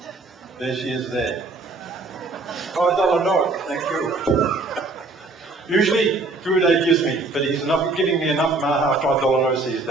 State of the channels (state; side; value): quieter; left; 3.4 dB